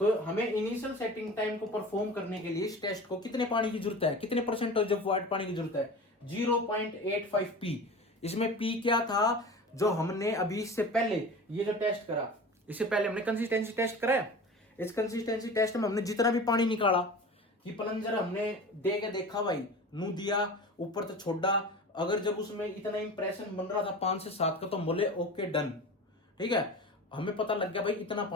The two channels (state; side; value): normal; both; correlation 0.35